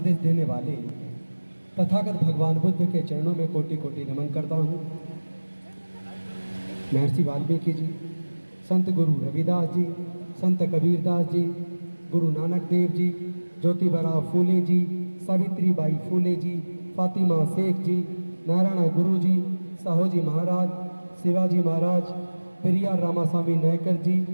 देने वाले तथागत भगवान बुद्ध के चरणों में कोटि कोटि नमन करता हूँ। महर्षि वाल्मीकि जी, संत गुरु रविदास जी, संत कबीरदास जी, गुरु नानक देव जी, ज्योतिबा फूले जी, सावित्रीबाई फूले जी, फातिमा शेख जी, नारायण गुरु जी, साहूजी महाराज, शिवाजी महाराज, पेरियार रामास्वामी नायकर जी,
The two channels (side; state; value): both; inverted; correlation -1.00